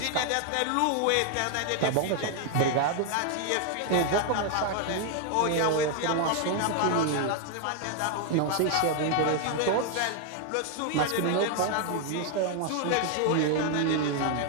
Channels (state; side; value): different; both; correlation 0.00